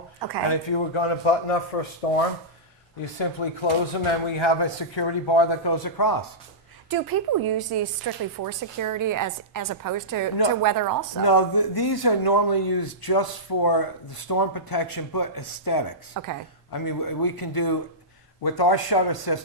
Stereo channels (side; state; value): both; normal; correlation -0.16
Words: Okay. And if you were going to button up for a storm, you simply close them, and we have a security bar that goes across. Do people use these strictly for security as opposed to weather also? No, these are normally used just for the storm protection, but aesthetics. Okay. I mean, we can do, with our shutter